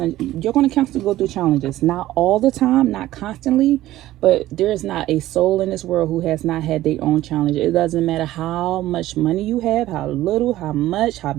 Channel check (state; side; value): quieter; left; 15.1 dB